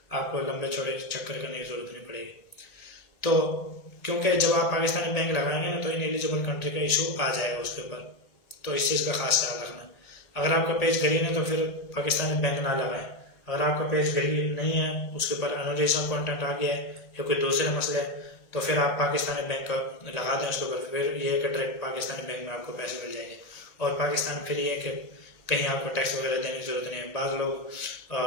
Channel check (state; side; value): late; right; 1.8 ms